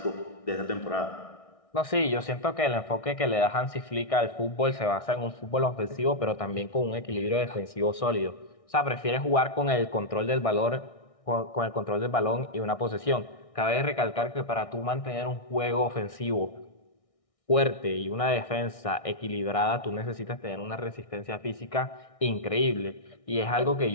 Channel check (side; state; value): right; late; 1.6 ms